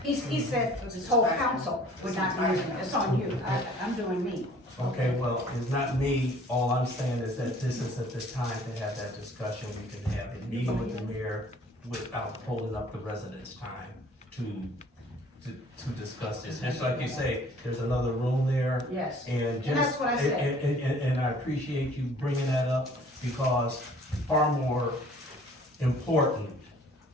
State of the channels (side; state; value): both; normal; correlation 0.53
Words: he said this whole council would not be using it. It's on you. I'm doing me. Okay, well, it's not me, all I'm saying is that this isn't the time to have that discussion, we can have a meeting with the mayor without holding up the residents' time to discuss this. Just like you say, there's another room there, Yes. and just. And that's what I said. And I appreciate you bringing that up, because far more important